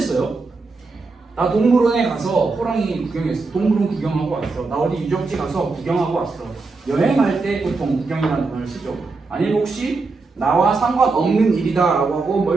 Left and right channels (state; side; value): quieter; left; 3.9 dB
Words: 나 동물원에 가서 호랑이 구경했어. 동물원 구경하고 왔어. 나 어디 유적지 가서 구경하고 왔어. 여행할 때 보통 구경이라는 단어를 쓰죠. 아니면 혹시 나와 상관없는 일이다라고 하고